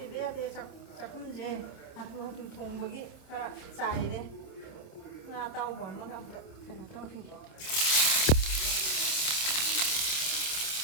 ꯌꯥꯗꯦ. ꯆꯥꯛꯈꯨꯝꯁꯦ ꯍꯥꯊꯨ ꯍꯥꯊꯨ ꯊꯣꯡꯕꯒꯤ ꯈꯔ ꯆꯥꯏꯔꯦ. ꯉꯥ ꯑꯇꯥꯎꯕ ꯑꯃꯒ ꯑꯝꯇ ꯀꯩꯅꯣ ꯇꯧꯈꯤꯒꯦ.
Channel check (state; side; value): late; right; 27 ms